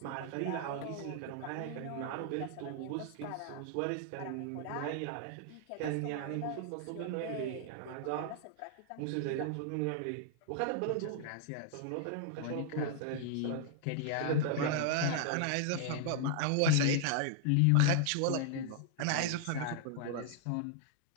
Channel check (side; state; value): both; different; correlation 0.00